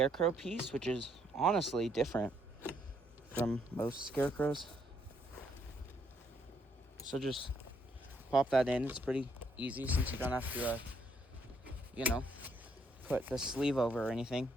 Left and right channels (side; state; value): both; normal; correlation 0.71